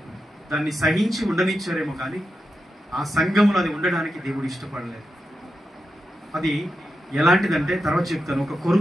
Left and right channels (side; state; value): both; normal; correlation 0.88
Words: దాన్ని సహించి ఉండనిచ్చారేమో, కానీ ఆ సంఘంలో అది ఉండడానికి దేవుడు ఇష్టపడలేదు. అది ఎలాంటిదంటే తర్వాత చెప్తాను. ఒక